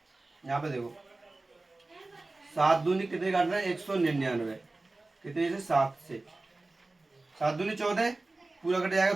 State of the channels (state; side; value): quieter; left; 3.1 dB